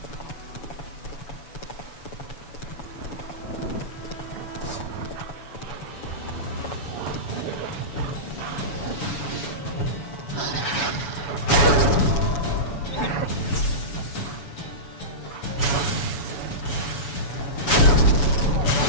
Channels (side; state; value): right; late; 7.1 ms